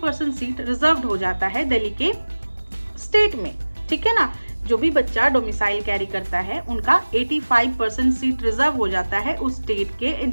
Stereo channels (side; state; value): both; inverted; correlation -1.00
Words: सीट रिजर्व्ड हो जाता है दिल्ली के स्टेट में. ठीक है ना, जो भी बच्चा डोमिसाइल कैरी करता है उनका 85% सीट रिजर्व हो जाता है उस स्टेट के